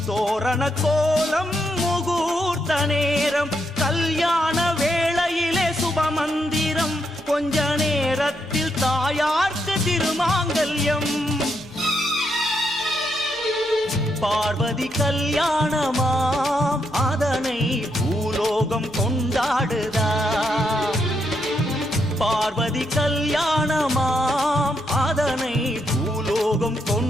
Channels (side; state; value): both; normal; correlation 0.79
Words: தோரண கோலம் முகூர்த்த நேரம். கல்யாண வேளையிலே சுபமந்திரம், கொஞ்ச நேரத்தில் தாயார்க்கு திருமாங்கல்யம். பார்வதி கல்யாணமாம் அதனை பூலோகம் கொண்டாடுதாம். பார்வதி கல்யாணமாம் அதனை பூலோகம்